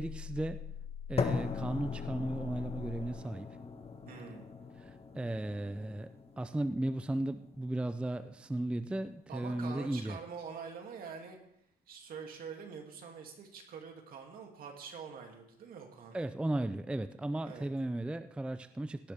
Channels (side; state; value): both; normal; correlation 0.87